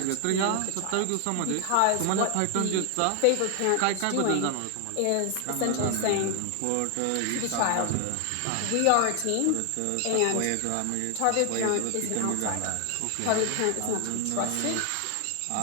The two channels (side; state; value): both; different; correlation 0.00